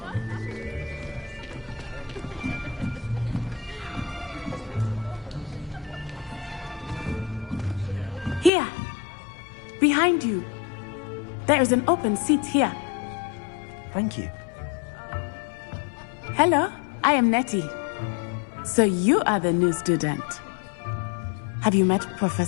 Here. Behind you. There is an open seat here. Thank you. Hello, I am Nettie. So you are the new student. Have you met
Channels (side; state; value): right; drops out; at 8.5 s